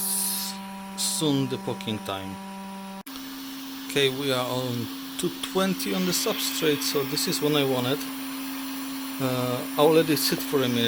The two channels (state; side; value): identical; both; correlation 1.00